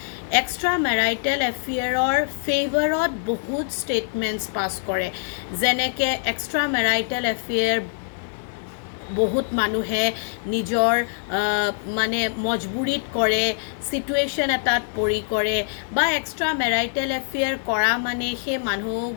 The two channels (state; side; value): silent; right; digital silence